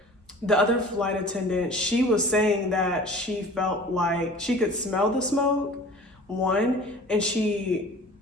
The other flight attendant, she was saying that she felt like she could smell the smoke, one, and she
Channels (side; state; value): both; normal; correlation 0.43